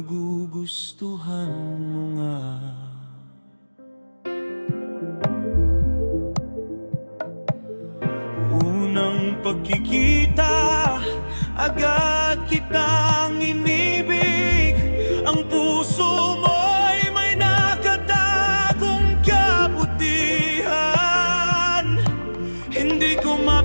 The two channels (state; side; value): inverted; both; correlation -1.00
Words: mo nga? Unang pagkikita, agad kitang inibig. Ang puso mo'y may nakatagong kabutihan. Hindi ko